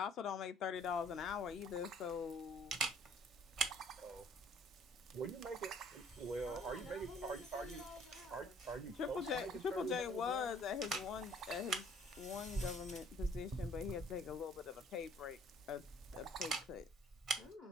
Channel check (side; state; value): both; normal; correlation 0.57